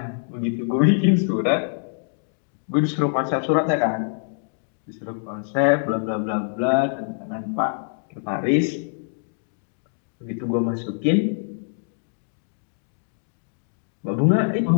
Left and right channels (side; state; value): right; silent; digital silence